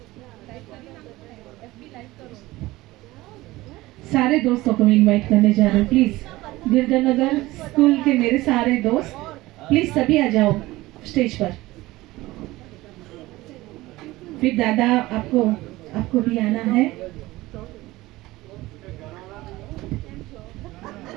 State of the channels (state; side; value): quieter; left; 18.7 dB